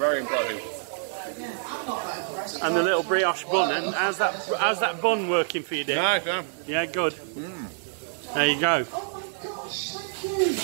impressive. I'm not that impressed. And the little brioche bun. And how's that bun working for you, Dick? Nice, yeah. Yeah, good. There you go. Oh my gosh, thank you.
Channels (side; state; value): left; silent; 60 dB below the other